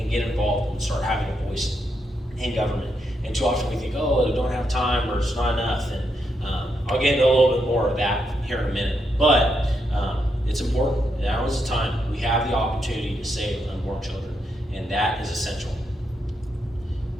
get involved and start having a voice in government. And too often we think, oh, I don't have time or it's not enough. And I'll get into a little bit more of that here in a minute. But it's important. Now is the time. We have the opportunity to save unborn children, and that is essential.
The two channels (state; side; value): normal; both; correlation 0.81